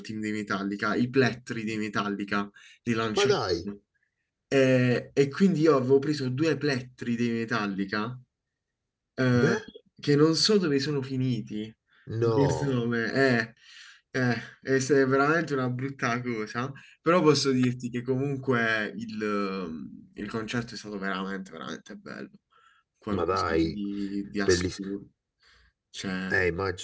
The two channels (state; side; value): identical; both; correlation 1.00